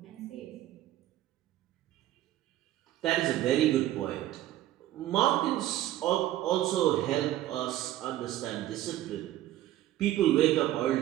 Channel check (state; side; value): quieter; left; 13.7 dB